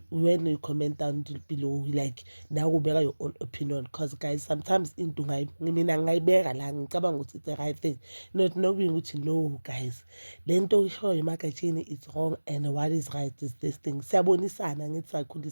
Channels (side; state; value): both; inverted; correlation -1.00